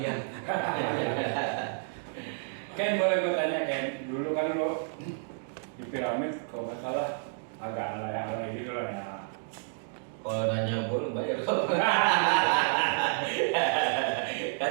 Ken, boleh gue tanya Ken, dulu kan lo di Piramid kalau nggak salah agak alay-alay gitu lah ya. Kalau nanya gue lu bayar kok. Kan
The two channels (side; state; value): left; silent; digital silence